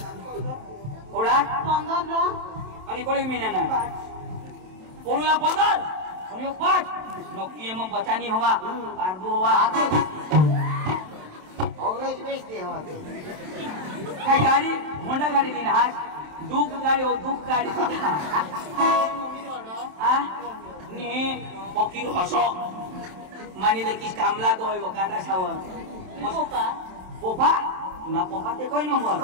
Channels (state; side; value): late; left; 27 ms